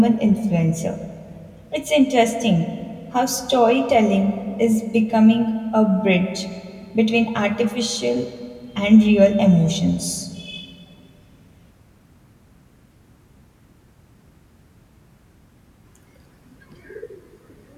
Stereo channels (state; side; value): identical; both; correlation 1.00